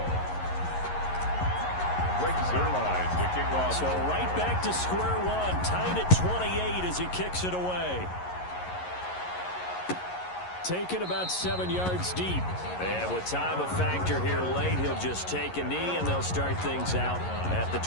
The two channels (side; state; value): right; late; 11 ms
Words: Greg Zuerlein to kick off. So right back to square one, tied at 28 as he kicks it away. Taken about 7 yards deep. And with time a factor here late, he'll just take a knee and they'll start things out at the